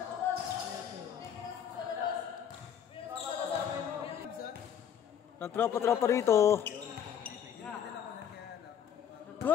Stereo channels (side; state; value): right; quieter; 8.8 dB